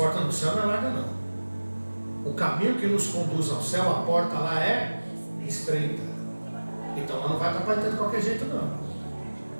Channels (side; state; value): both; inverted; correlation -1.00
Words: do céu não é larga não. O caminho que nos conduz ao céu, a porta lá é estreita. Então lá não vai estar para entrar de qualquer jeito não.